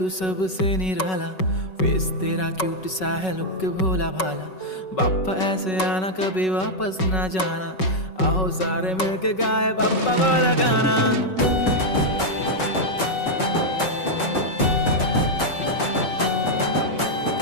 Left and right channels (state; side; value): late; right; 5.3 ms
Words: सबसे निराला, फेस तेरा क्यूट सा है लुक भोला भाला। बाप्पा ऐसे आना कभी वापस ना जाना, आओ सारे मिलके गाए बाप्पा वाला गाना।